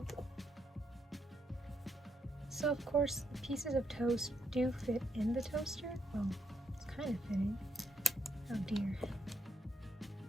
So of course, pieces of toast do fit in the toaster. Well, it's kind of fitting. Oh dear.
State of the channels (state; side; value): normal; both; correlation 0.75